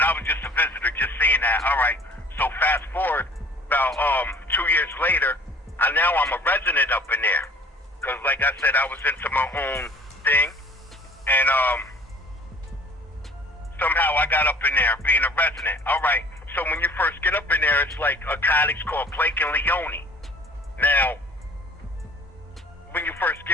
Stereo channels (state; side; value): normal; both; correlation 0.50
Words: I was just a visitor, just seeing that. All right. So fast forward about 2 years later, now I'm a resident up in there. Because, like I said, I was into my own thing, and somehow I got up in there, being a resident. All right, so when you first get up in there, it's like a cottage called Blake and Leone. Now, when you first